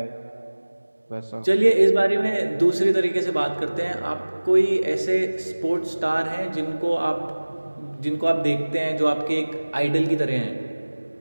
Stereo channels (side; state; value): both; inverted; correlation -1.00